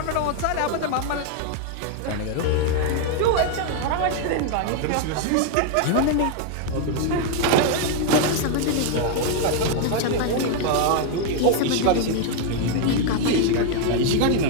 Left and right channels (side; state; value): both; different; correlation 0.00